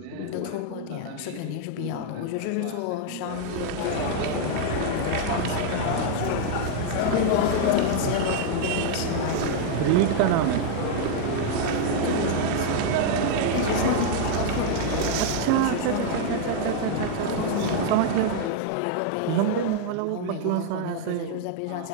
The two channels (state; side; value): different; both; correlation 0.00